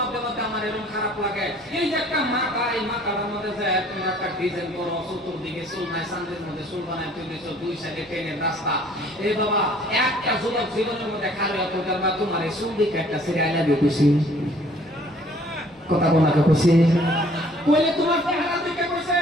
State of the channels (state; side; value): normal; both; correlation 0.57